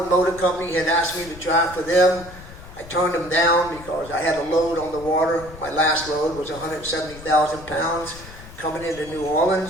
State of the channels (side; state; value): left; noise; rumble, 17 dB below the sound